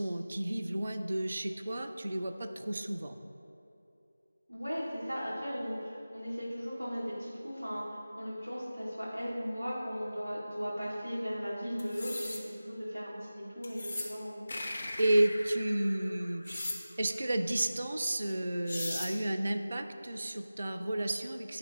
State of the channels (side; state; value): both; inverted; correlation -0.97